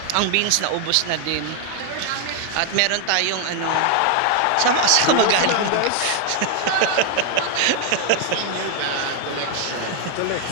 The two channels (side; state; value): both; different; correlation 0.00